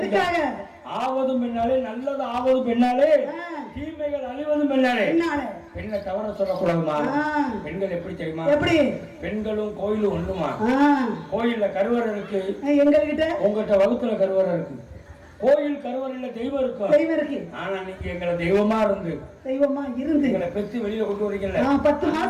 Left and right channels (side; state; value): both; identical; correlation 1.00